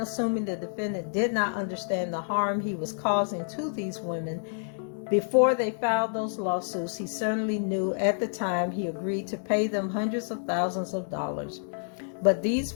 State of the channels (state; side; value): silent; right; digital silence